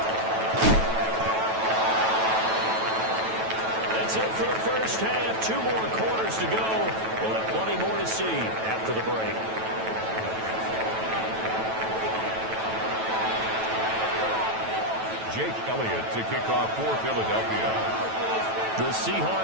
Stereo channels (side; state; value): left; late; 9.1 ms